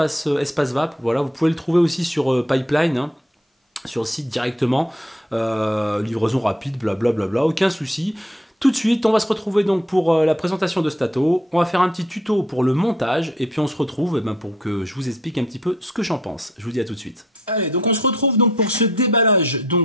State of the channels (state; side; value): normal; both; correlation 0.64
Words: Vap, voilà, vous pouvez le trouver aussi sur Pipeline, hein, sur le site directement, livraison rapide, blablabla, aucun souci. Tout de suite, on va se retrouver donc pour la présentation de cet ato. On va faire un petit tuto pour le montage et puis on se retrouve pour que je vous explique un petit peu ce que j'en pense. Je vous dis à tout de suite. Allez, donc on se retrouve donc pour ce déballage